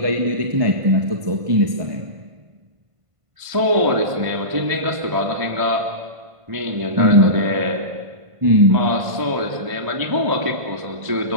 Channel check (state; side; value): late; left; 1.5 ms